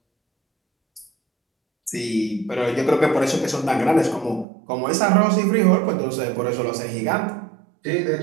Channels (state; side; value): drops out; left; at 4.5 s